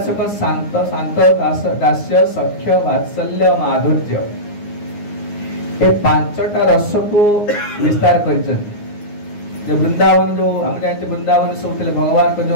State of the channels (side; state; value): right; late; 9.7 ms